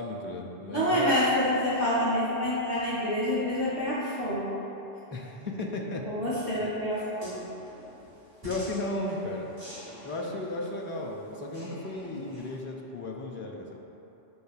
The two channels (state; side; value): late; left; 5.5 ms